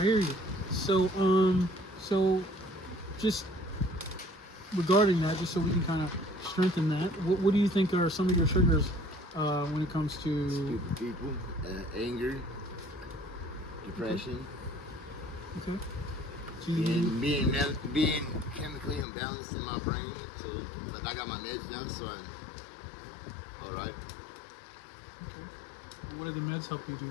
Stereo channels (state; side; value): drops out; right; at 19.1 s